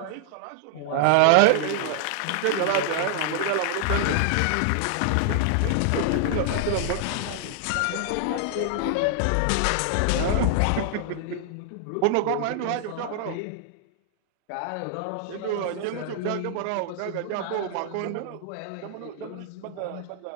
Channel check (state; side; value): different; both; correlation 0.00